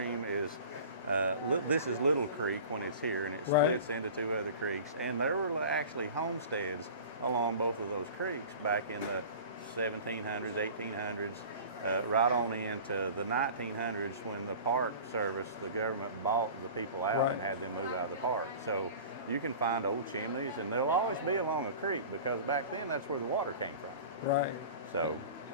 is this is Little Creek when it's here, and it splits into two other creeks. And there were actually homesteads along both of those creeks back in the 1700s, 1800s, right on into the 1900s when the Park Service, the government bought the people out and had them move out of the park. So you can find old chimneys, and they'll always be along a creek because back then that's where the water came from. So.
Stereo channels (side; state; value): both; inverted; correlation -0.39